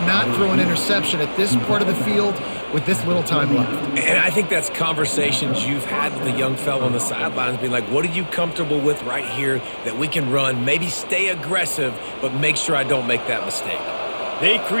throw an interception at this part of the field with this little time left. And I think that's conversations you've had with the young fellow on the sidelines, being like, what are you comfortable with right here that we can run? Maybe stay aggressive, but make sure I don't make that mistake. They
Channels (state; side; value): inverted; both; correlation -1.00